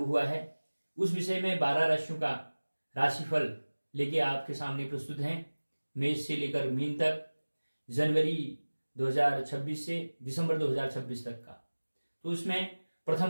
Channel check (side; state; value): both; inverted; correlation -1.00